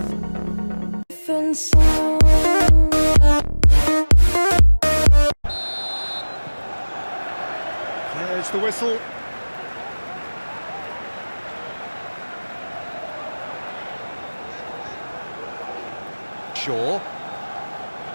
There's the whistle. Shaw.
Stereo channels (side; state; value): both; inverted; correlation -1.00